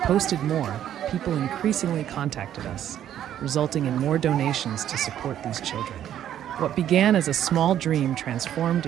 more, people increasingly contacted us, resulting in more donations to support these children. What began as a small dream transformed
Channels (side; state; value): left; quieter; 10.8 dB